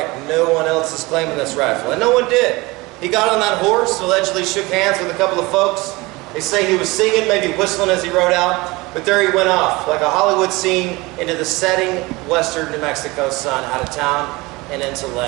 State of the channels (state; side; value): quieter; left; 22.8 dB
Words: no one else is claiming this rifle. And no one did. He got on that horse, allegedly shook hands with a couple of folks. They say he was singing, maybe whistling as he rode out. But there he went off, like a Hollywood scene, into the setting western New Mexico sun, out of town and into